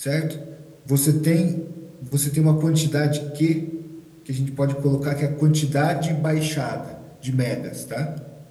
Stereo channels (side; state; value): both; identical; correlation 1.00